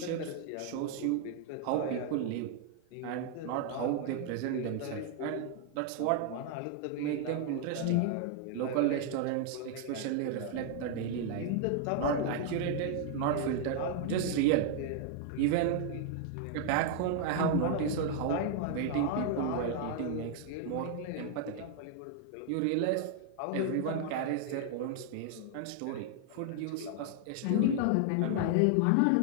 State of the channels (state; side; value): different; both; correlation 0.00